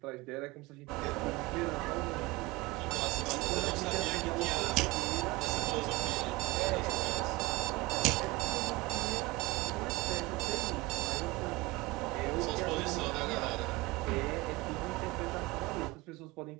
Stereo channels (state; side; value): quieter; left; 22.4 dB